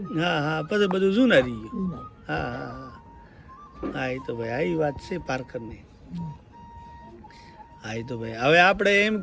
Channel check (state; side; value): identical; both; correlation 1.00